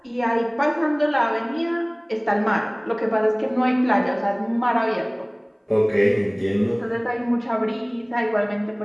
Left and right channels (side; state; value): both; identical; correlation 1.00